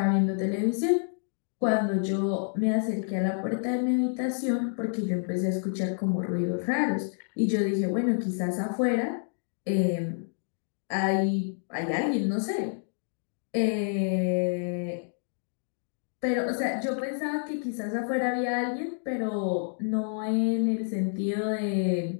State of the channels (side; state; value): right; silent; digital silence